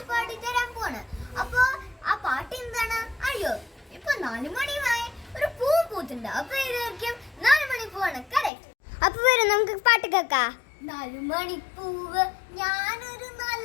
പാടി തരാൻ പോണ്. അപ്പൊ ആ പാട്ട് എന്താണ്? അയ്യോ, ഇപ്പൊ 4 മണിയായി, ഒരു പൂ പൂത്തുണ്ട്. അപ്പൊ ഇതായിരിക്കും 4 മണിപ്പൂവാണ്. കറക്റ്റ്. അപ്പൊ വരും, നമുക്ക് പാട്ട് കേൾക്കാം. 4 മണിപ്പൂവ്, ഞാനൊരു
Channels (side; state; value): right; drops out; at 8.5 s